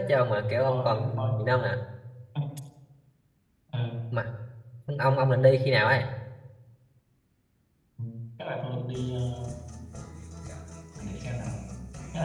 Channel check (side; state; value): both; identical; correlation 1.00